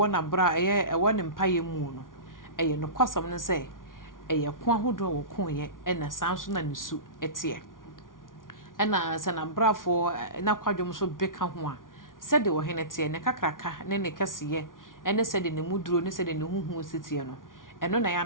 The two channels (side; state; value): right; late; 0.89 ms